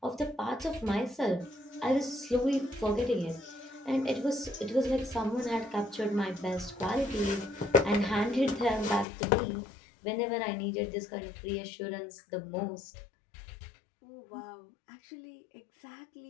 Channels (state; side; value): drops out; right; at 9.1 s